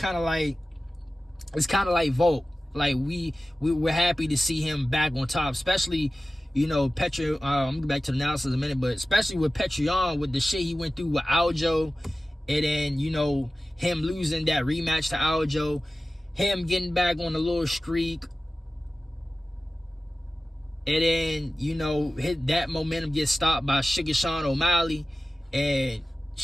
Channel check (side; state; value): both; normal; correlation 0.96